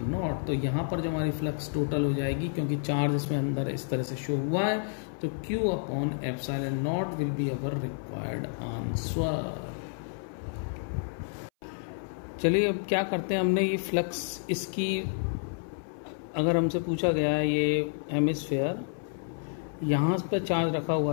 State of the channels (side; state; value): right; silent; 58 dB below the other